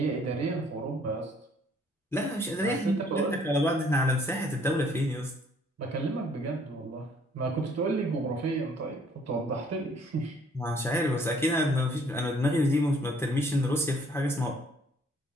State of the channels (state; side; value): normal; both; correlation 0.61